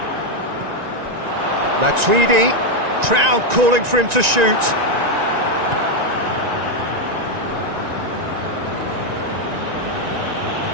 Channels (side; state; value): left; late; 1.9 ms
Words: Matuidi, crowd calling for him to shoot.